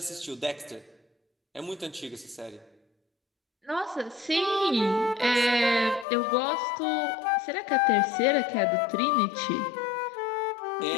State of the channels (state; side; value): drops out; right; at 6.1 s